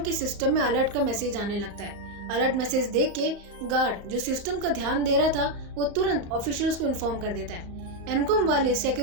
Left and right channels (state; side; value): late; left; 35 ms